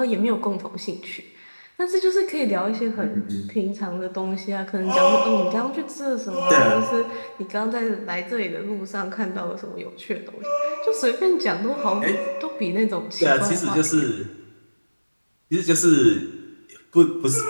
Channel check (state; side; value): inverted; both; correlation -1.00